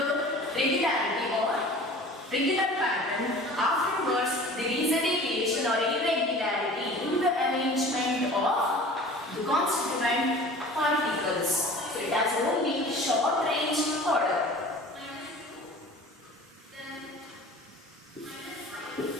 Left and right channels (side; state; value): both; normal; correlation 0.43